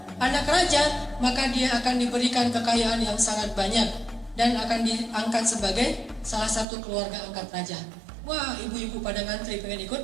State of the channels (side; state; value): left; drops out; at 6.7 s